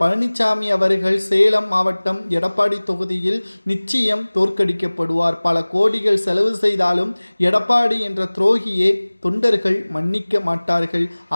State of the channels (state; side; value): inverted; both; correlation -1.00